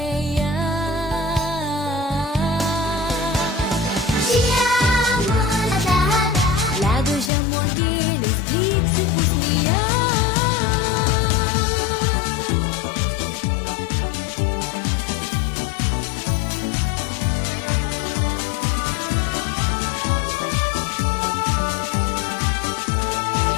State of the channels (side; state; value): right; drops out; at 7.3 s